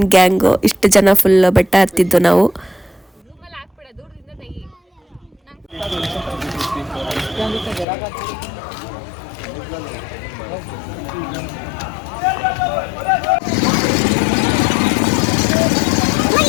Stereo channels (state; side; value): drops out; right; at 7.9 s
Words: ಗ್ಯಾಂಗು. ಇಷ್ಟು ಜನ ಫುಲ್ ಬೆಟ್ಟ ಹತ್ತಿದ್ದು ನಾವು.